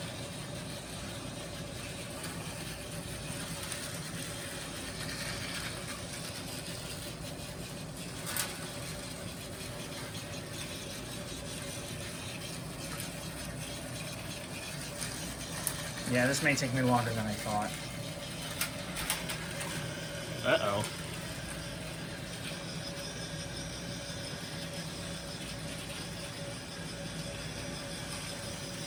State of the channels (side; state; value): both; identical; correlation 1.00